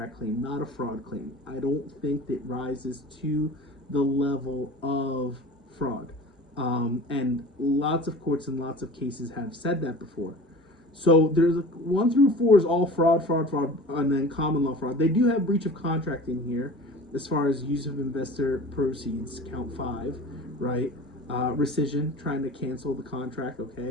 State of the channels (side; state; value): both; normal; correlation 0.39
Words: claim, not a fraud claim. I don't think that rises to the level of fraud. And lots of courts and lots of cases have said that before. So there's 1 through 4 is all fraud, and then common law fraud. They do have breach of contract in here as far as use of investor proceeds, count 5, right? Rescission, trying to cancel the contract,